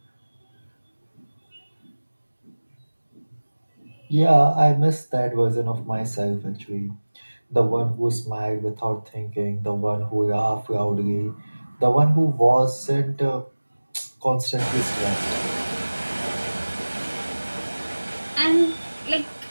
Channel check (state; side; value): inverted; both; correlation -1.00